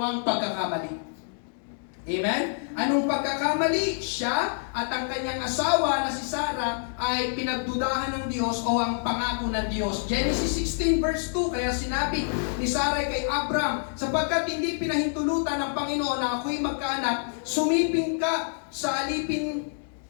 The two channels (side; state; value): right; silent; digital silence